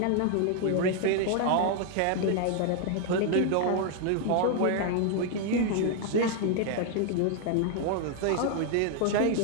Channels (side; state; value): both; different; correlation 0.00